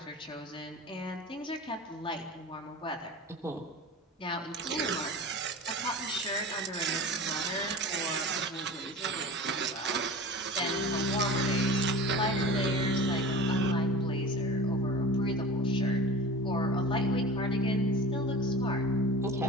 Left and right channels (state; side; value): normal; both; correlation 0.36